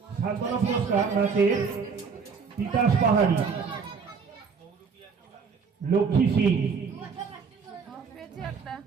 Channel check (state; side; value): quieter; left; 5.6 dB